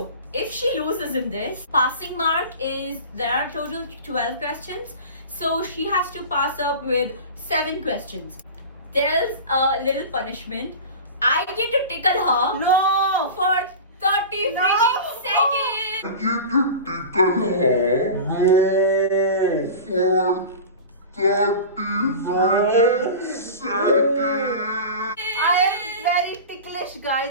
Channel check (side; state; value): both; inverted; correlation -0.32